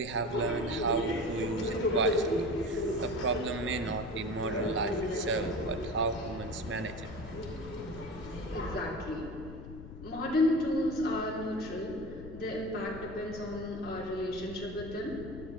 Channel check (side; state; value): left; noise; rumble, 12 dB below the sound